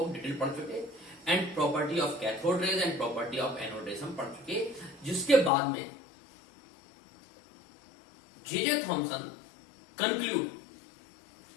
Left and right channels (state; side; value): drops out; right; at 5.5 s